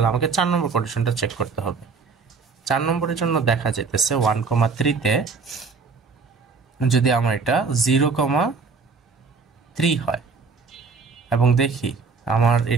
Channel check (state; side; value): quieter; left; 4.8 dB